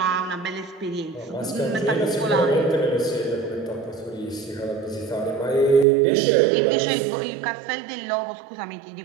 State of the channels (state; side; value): drops out; left; at 5.9 s